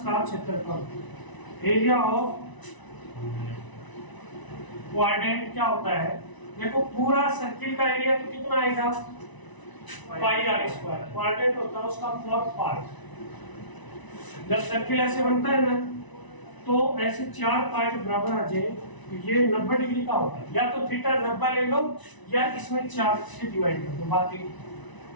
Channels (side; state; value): right; late; 1.0 ms